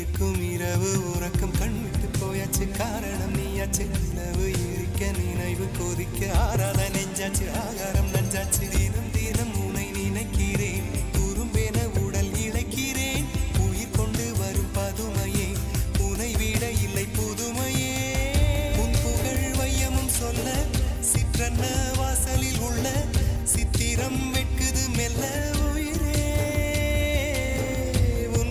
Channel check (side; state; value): both; identical; correlation 1.00